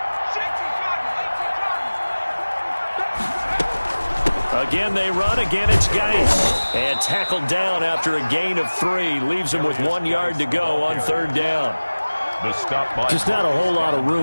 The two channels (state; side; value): inverted; both; correlation -1.00